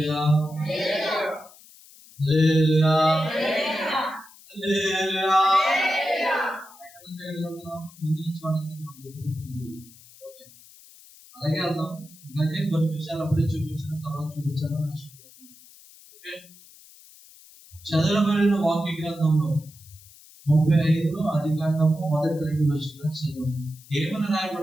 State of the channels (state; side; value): noise; left; hiss, 23 dB below the sound